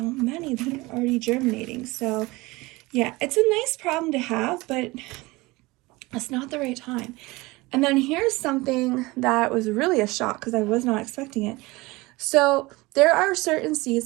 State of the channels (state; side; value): quieter; left; 22.1 dB